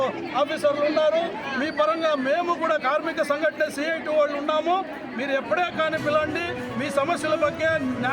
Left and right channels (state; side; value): identical; both; correlation 1.00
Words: ఆఫీసర్లు ఉన్నారు. మీ పరంగా మేము కూడా కార్మిక సంఘటన సిఐటి వాళ్ళు ఉన్నాము. మీరు ఎప్పుడే కానీ పిలండి, మీ సమస్యల ಬಗ್ಗೆ